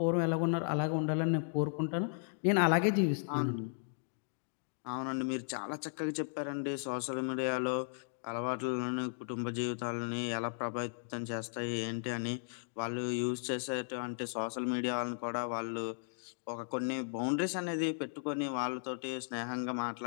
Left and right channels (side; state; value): right; silent; digital silence